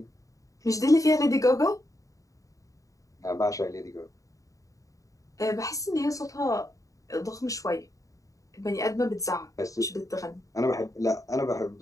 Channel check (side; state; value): right; late; 0.16 ms